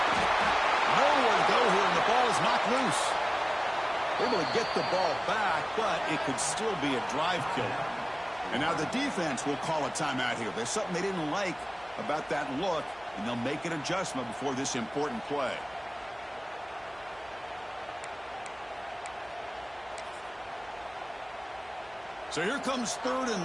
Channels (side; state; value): right; noise; hum, 28 dB below the sound